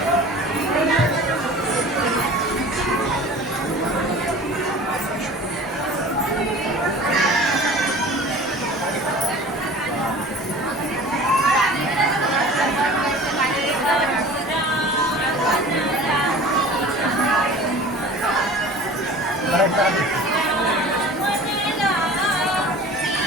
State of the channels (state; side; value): normal; both; correlation 0.41